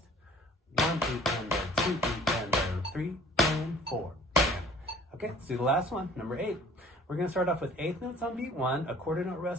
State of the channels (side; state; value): both; normal; correlation 0.51